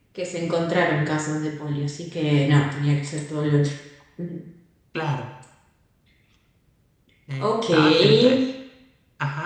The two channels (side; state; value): both; identical; correlation 1.00